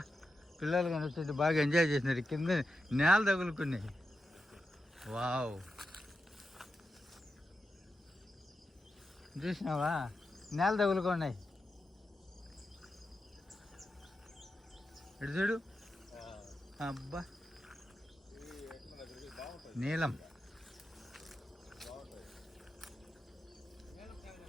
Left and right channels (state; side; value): normal; both; correlation 0.89